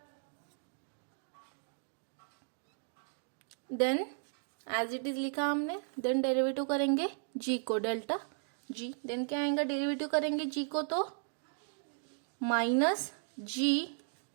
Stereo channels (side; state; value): left; silent; digital silence